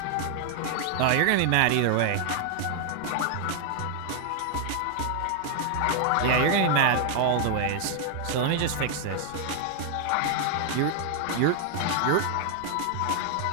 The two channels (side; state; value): both; different; correlation 0.00